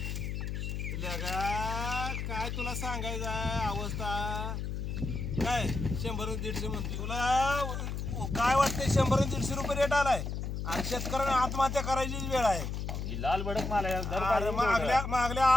लगा काय तुला सांगायचं आहे अवस्था काय 100-150 म्हणते तुला काय वाटतंय 100-150 रुपये रेट आलाय आणि शेतकऱ्यांना आत्महत्या करायची वेळ आहे. ही लाल भडक माल आहे दर अरे मागल्या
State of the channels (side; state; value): left; noise; hum, 4 dB below the sound